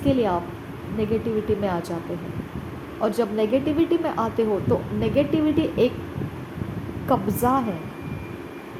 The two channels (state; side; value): identical; both; correlation 1.00